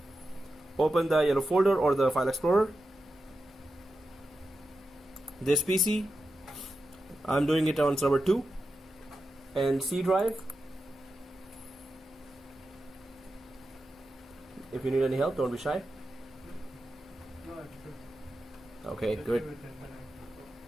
Open the yellow folder or the file explorer. This PC, I'm doing it on server 2 and C drive. If you need any help, don't be shy. No, it's good. Okay, good.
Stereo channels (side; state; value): both; normal; correlation 0.90